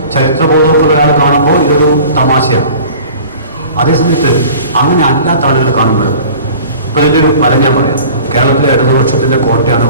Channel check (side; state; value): both; inverted; correlation -0.43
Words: ചരിത്രബോധവും ഒക്കെ ഒരാൾ കാണുമ്പോൾ ഇതൊരു തമാശയാണ്. അതേസമയത്ത് അങ്ങനെ അല്ലാത്ത ആളുകൾ കാണുമ്പോൾ ഇപ്പോൾ ഇതിൻ്റെ ഒരു ഫലം ഞാൻ പറയാം. കേരളത്തിലെ ഇടതുപക്ഷത്തിൻ്റെ കോട്ടയാണ്